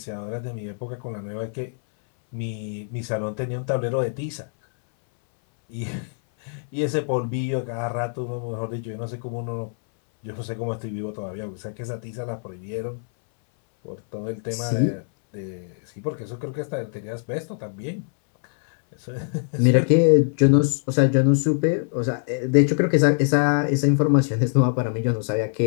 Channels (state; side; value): silent; right; 59 dB below the other